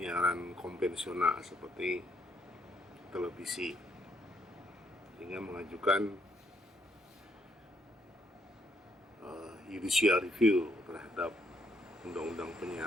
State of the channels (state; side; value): normal; both; correlation 0.72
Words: konvensional seperti televisi, sehingga mengajukan judicial review terhadap undang-undang